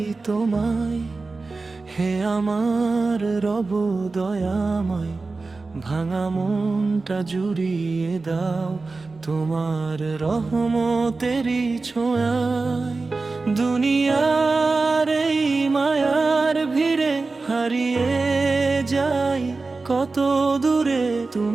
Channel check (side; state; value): left; quieter; 3.8 dB